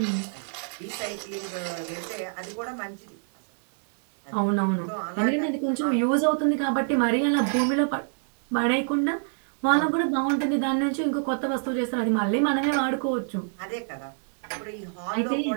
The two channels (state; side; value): silent; left; digital silence